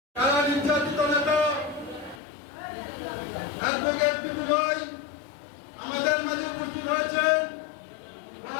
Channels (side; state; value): right; drops out; at 2.2 s